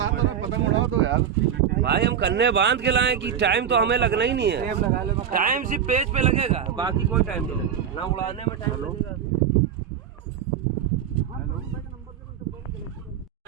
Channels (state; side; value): quieter; left; 8.5 dB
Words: भाई हम कन्ने बांध के लाए कि time तो हमें लगना ही नहीं है। टाइम सिर्फ पेज पे लगेगा, बाकी कोई टाइम नहीं लगेगा, ना उड़ाने में टाइम लगेगा।